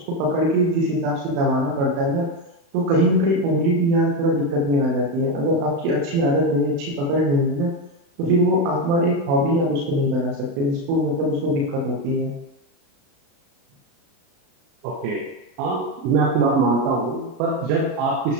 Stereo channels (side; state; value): left; late; 36 ms